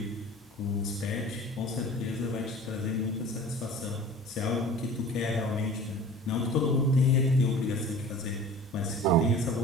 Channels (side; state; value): both; normal; correlation 0.42